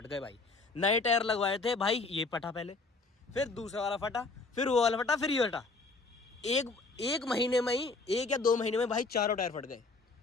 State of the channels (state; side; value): quieter; right; 3.7 dB